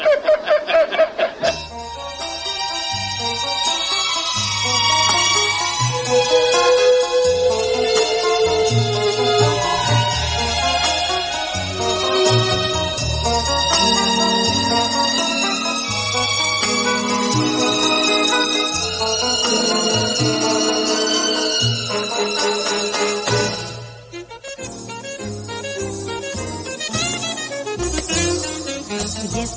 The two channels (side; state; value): both; identical; correlation 1.00